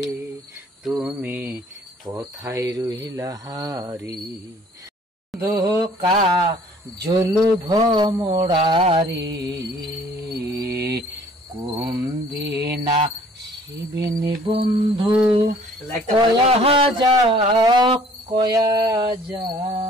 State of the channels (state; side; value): normal; both; correlation 0.55